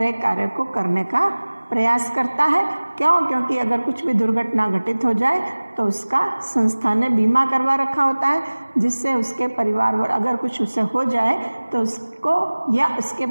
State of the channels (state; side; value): inverted; both; correlation -1.00